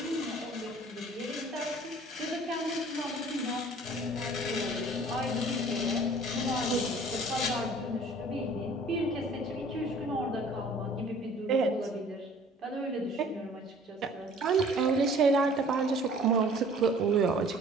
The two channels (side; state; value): both; normal; correlation 0.51